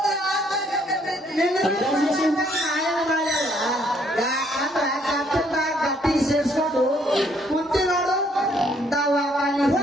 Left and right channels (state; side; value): normal; both; correlation 0.67